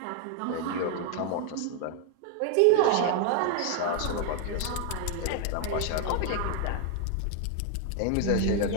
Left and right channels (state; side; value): different; both; correlation 0.01